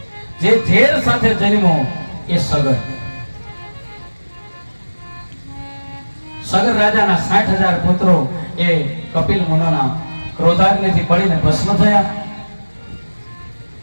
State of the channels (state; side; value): inverted; both; correlation -1.00